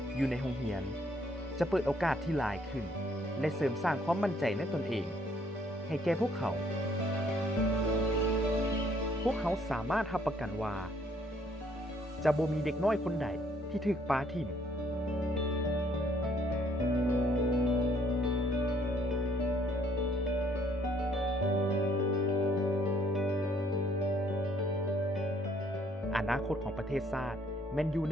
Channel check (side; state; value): both; normal; correlation 0.65